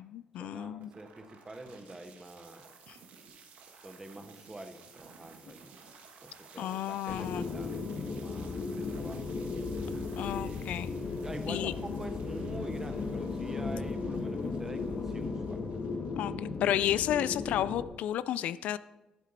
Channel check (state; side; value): quieter; right; 6.2 dB